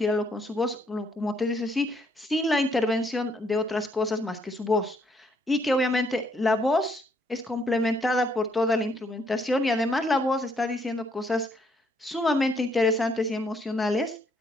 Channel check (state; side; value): normal; both; correlation 0.70